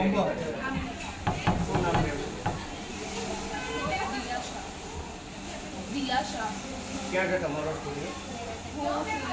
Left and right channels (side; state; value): both; identical; correlation 1.00